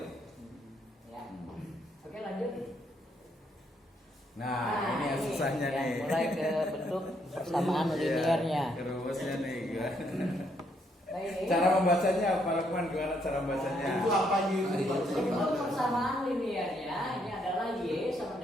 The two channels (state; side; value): normal; both; correlation 0.73